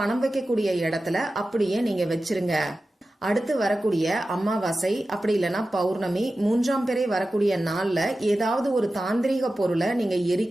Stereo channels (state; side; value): normal; both; correlation 0.94